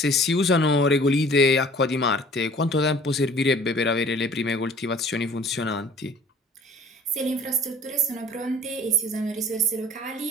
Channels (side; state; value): both; normal; correlation 0.50